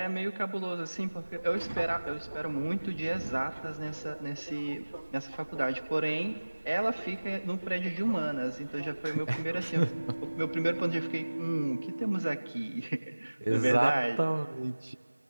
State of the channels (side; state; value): both; inverted; correlation -1.00